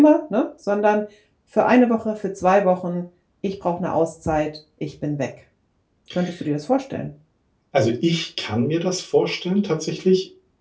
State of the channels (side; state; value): both; identical; correlation 1.00